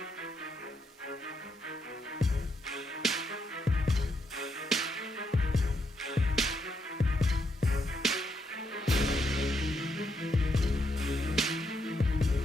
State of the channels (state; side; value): normal; both; correlation 0.78